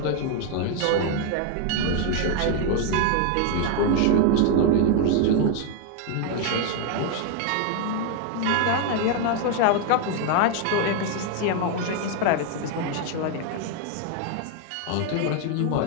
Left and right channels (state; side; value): different; both; correlation 0.01